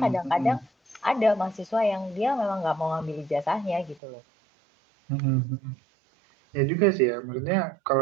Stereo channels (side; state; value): left; drops out; at 4.0 s